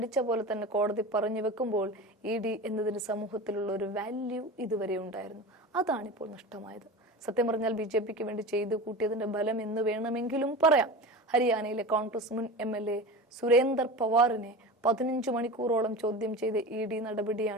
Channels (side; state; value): both; normal; correlation 0.30